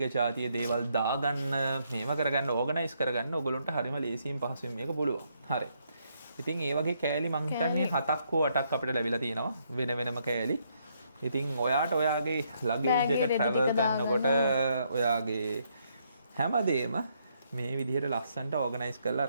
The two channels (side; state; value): both; inverted; correlation -0.74